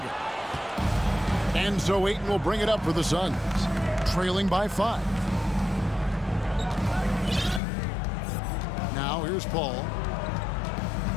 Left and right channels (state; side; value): drops out; right; at 7.6 s